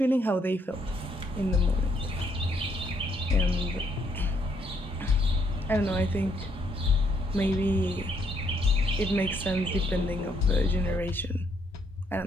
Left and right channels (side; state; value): both; normal; correlation 0.72